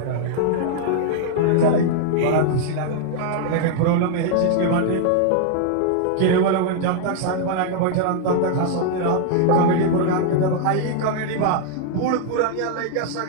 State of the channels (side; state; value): both; different; correlation -0.01